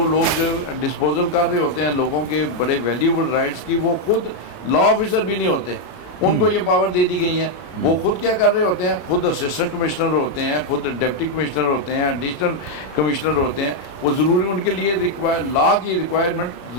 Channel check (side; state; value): right; late; 33 ms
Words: لوگ ڈسپوزل کر رہے ہوتے ہیں لوگوں کے بڑے ویلیوبل رائٹس کی، وہ خود لا آفیسر بھی نہیں ہوتے، ان کو یہ پاور دے دی گئی ہیں۔ وہ خود کیا کر رہے ہوتے ہیں؟ خود اسسٹنٹ کمشنر ہوتے ہیں، خود ڈپٹی کمشنر ہوتے ہیں، ایڈیشنل کمشنر ہوتے ہیں۔ وہ ضروری ان کے لیے لا کی ریکوائرمنٹ